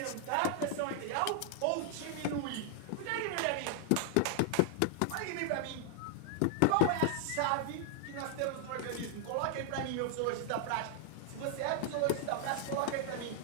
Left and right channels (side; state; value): both; different; correlation 0.00